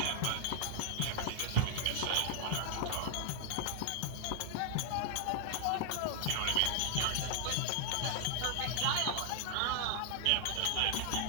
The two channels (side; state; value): both; different; correlation 0.00